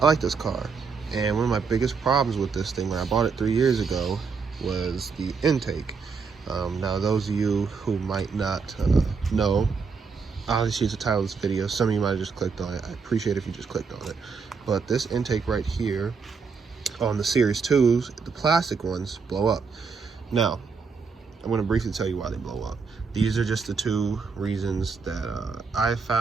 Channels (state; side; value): quieter; left; 5.2 dB